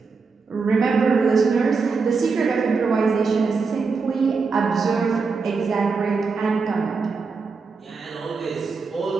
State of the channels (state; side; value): quieter; left; 4.7 dB